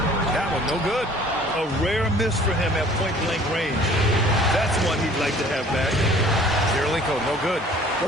That one no good. A rare miss for him at point-blank range. That's one he'd like to have back. Kirilenko, no good. Well,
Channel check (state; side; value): normal; both; correlation 0.52